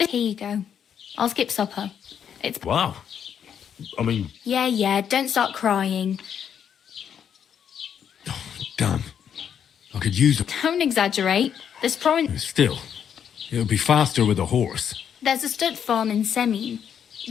you go. I'll skip supper. It's... Wow. I mean... Yeah, don't start crying. Damn. I could use it. Don't exaggerate. There's probably... Still, it would be faster with a horse. There's a stud farm in Semin.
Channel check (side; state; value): right; quieter; 8.3 dB